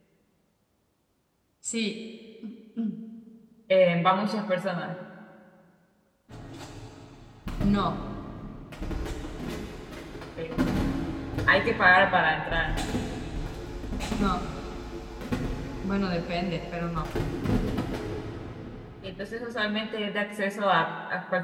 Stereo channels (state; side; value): identical; both; correlation 1.00